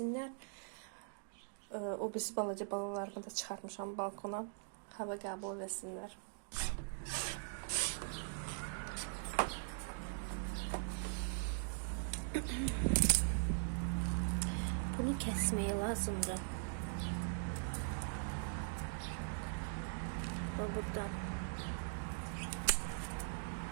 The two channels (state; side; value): silent; left; digital silence